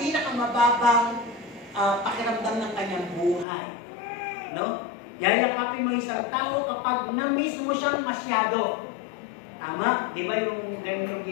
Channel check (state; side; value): drops out; right; at 3.5 s